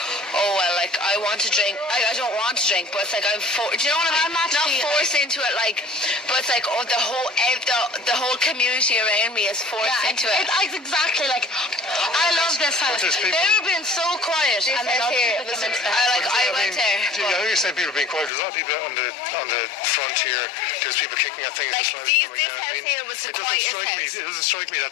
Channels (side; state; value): right; drops out; at 18.3 s